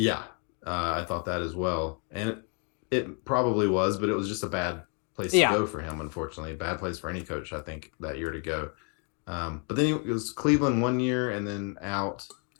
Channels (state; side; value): quieter; right; 38.8 dB